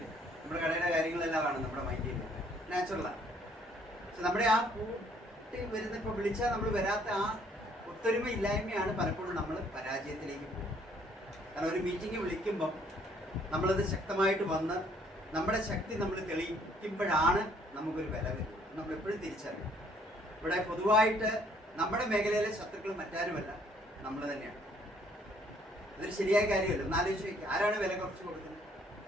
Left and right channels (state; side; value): normal; both; correlation 0.63